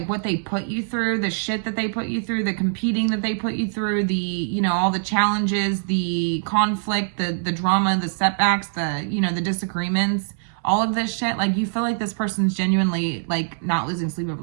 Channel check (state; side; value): silent; left; digital silence